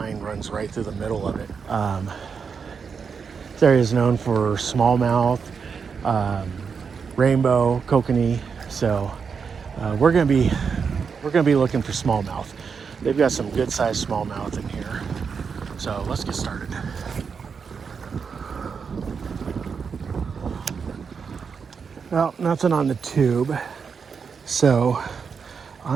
runs right through the middle of it. This area is known for smallmouth, rainbow, kokanee. So we're gonna be looking for smallmouth. They've got some good sized smallmouth in here. So let's get started. Well, nothing on the tube. So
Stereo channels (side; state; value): left; quieter; 5.9 dB